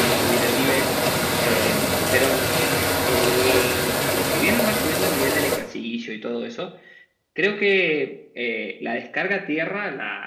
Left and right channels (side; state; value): both; identical; correlation 1.00